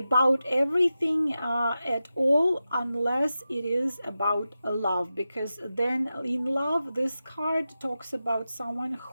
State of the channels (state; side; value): inverted; both; correlation -0.92